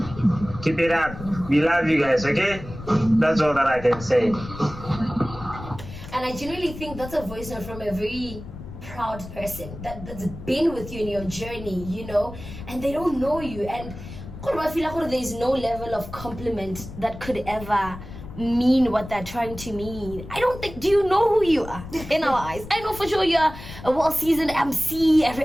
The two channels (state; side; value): noise; left; rumble, 13 dB below the sound